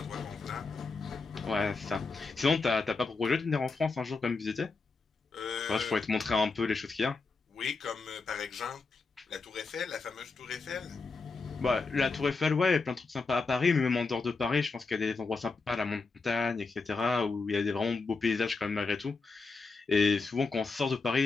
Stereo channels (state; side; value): quieter; right; 4.1 dB